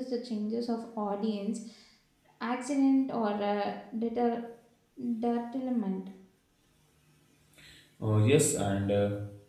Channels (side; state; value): both; identical; correlation 1.00